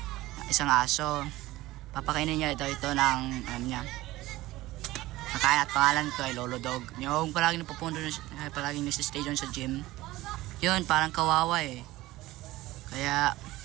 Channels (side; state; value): left; quieter; 17.8 dB